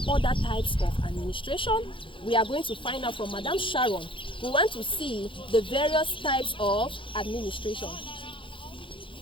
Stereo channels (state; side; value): late; right; 0.25 ms